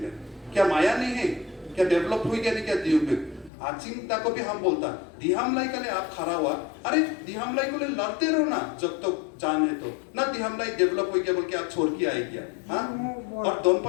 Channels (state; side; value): drops out; right; at 3.5 s